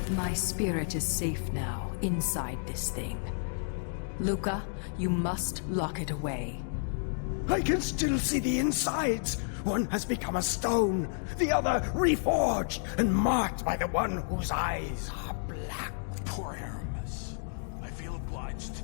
My spirit is safe now, inside this thing. Luca, you must lock it away. I can still see the insides. One has become a stone, the other reforged and marked by the one whose eyes are black. Poor Aramis. I feel obliged to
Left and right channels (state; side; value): silent; right; digital silence